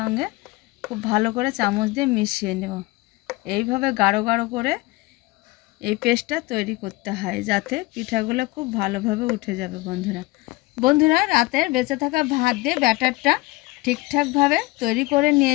খুব ভালো করে চামচ দিয়ে মিশিয়ে নেব। এইভাবে গাঢ় গাঢ় করে এই পেস্টটা তৈরি করতে হয় যাতে পিঠাগুলো খুব ভালোভাবে উঠে যাবে। বন্ধুরা রাতের বেঁচে থাকা ভাত দিয়ে ব্যাটারটা ঠিকঠাকভাবে তৈরি করে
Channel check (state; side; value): quieter; right; 21.5 dB